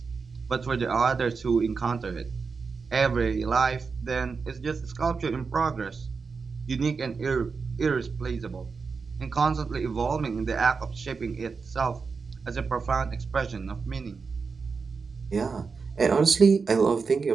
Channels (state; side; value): quieter; left; 5.0 dB